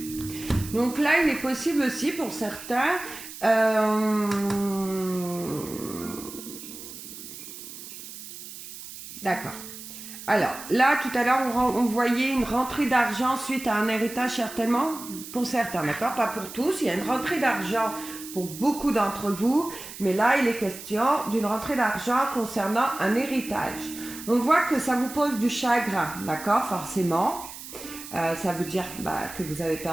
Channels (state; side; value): noise; right; hiss, 13 dB below the sound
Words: Donc là, il est possible aussi pour certains d'accord. Alors, là, tout à l'heure, on voyait une rentrée d'argent suite à un héritage, certainement, pour certains, d'accord? Pas pour tous. Il y a une rentrée d'argent pour beaucoup d'entre vous, mais là, il est question d'une rentrée d'argent concernant un héritage. On voit que ça vous pose du chagrin, d'accord? Forcément. Ça veut dire que vous avez